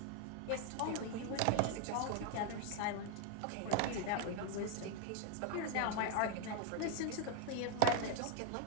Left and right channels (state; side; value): different; both; correlation 0.01